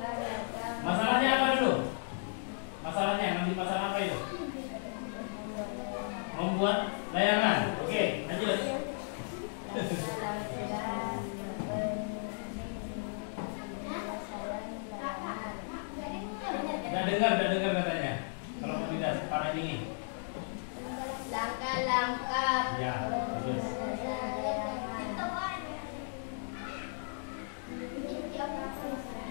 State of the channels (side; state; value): right; silent; digital silence